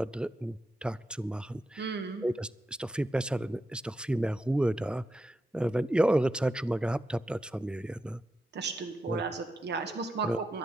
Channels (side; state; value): both; normal; correlation 0.86